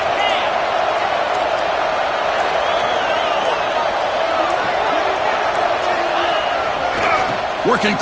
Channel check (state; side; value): identical; both; correlation 1.00